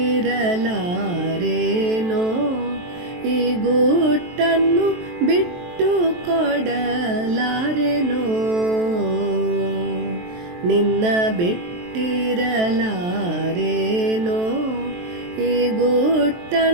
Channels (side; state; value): left; late; 23 ms